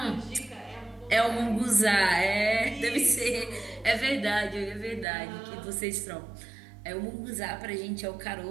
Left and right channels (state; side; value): drops out; left; at 5.1 s